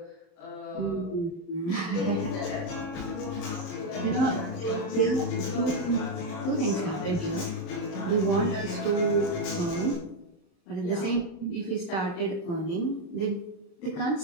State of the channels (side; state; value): right; late; 39 ms